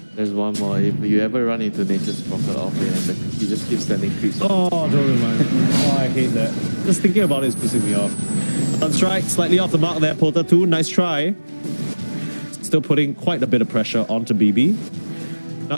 There's one more. If you ever run into Nature's Prophet offlane and he just keeps sending creeps. Oh, don't remind me. Oh, I hate that. Just thinking about it is pissing me off. Sunstrike, slightly off the mark there, Porter 2. Nice try. Still putting quite a bit of pressure onto BB.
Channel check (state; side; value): inverted; both; correlation -1.00